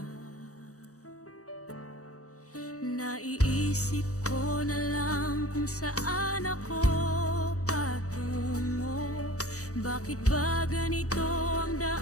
Naiisip ko na lang kung saan ako patungo. Bakit ba ganito ang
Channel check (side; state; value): right; late; 0.66 ms